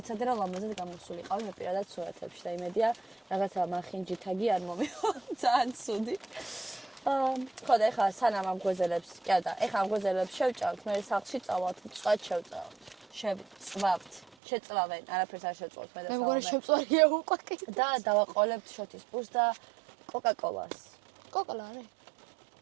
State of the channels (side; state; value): left; drops out; at 14.2 s